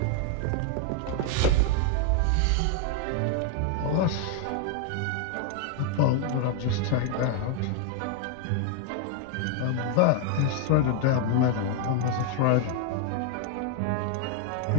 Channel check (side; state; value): both; different; correlation 0.00